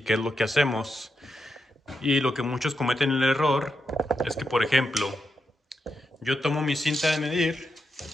es lo que hacemos. Y lo que muchos cometen el error es que, por ejemplo, yo tomo mi cinta de medir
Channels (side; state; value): both; normal; correlation 0.85